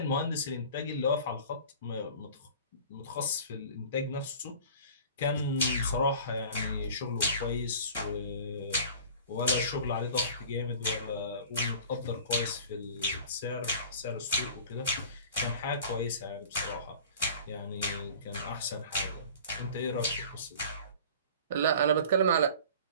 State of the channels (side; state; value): both; inverted; correlation -0.43